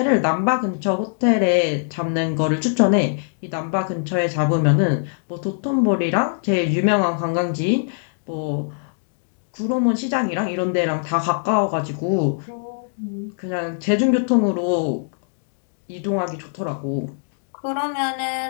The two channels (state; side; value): silent; right; digital silence